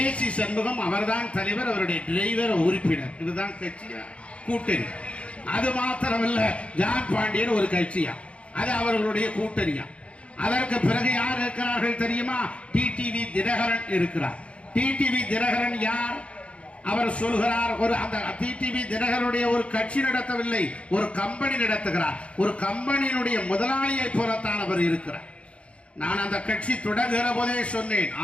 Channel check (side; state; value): right; late; 0.061 ms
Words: சண்முகம் அவர்தான் தலைவர், அவருடைய டிரைவர் உறுப்பினர். இதுதான் கட்சியா? கூட்டணி. அது மாத்திரமல்ல, ஜான் பாண்டியன் ஒரு கட்சியா? அது அவர்களுடைய கூட்டணியா? அதற்கு பிறகு யார் இருக்கிறார்கள் தெரியுமா? டிடிவி தினகரன் இருக்கிறார். டிடிவி தினகரன் யார்? அவர் சொல்கிறார், ஒரு அந்த டிடிவி தினகரனுடைய ஒரு கட்சி நடத்தவில்லை, ஒரு கம்பெனி நடத்துகிறார். ஒரு கம்பெனியினுடைய முதலாளியை போலத்தான் அவர் இருக்கிறார். நான் அந்த கட்சி தொடங்குகிற போதே சொன்னேன்,